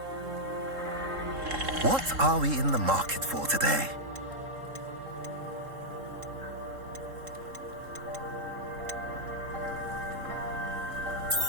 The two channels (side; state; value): left; late; 3.7 ms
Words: What are we in the market for today?